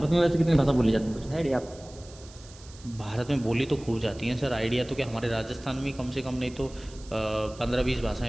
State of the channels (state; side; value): noise; right; hiss, 21 dB below the sound